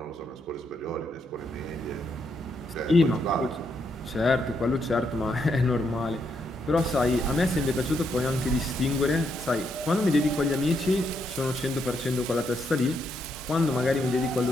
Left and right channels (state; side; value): normal; both; correlation 0.78